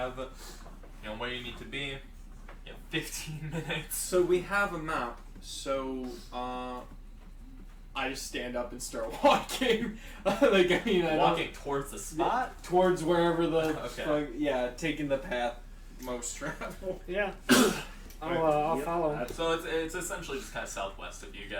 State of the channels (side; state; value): both; identical; correlation 1.00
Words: where you need to be. You have 15 minutes. So we have a map. So I just stand up and start walking. Walking towards the spot? Towards wherever the okay. Taking the path most travel. Yeah. I'll follow. So it's essentially just kind of southwest of you